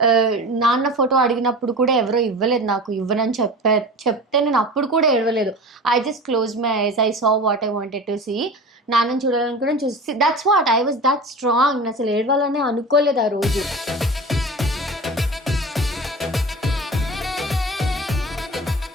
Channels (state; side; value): normal; both; correlation 0.34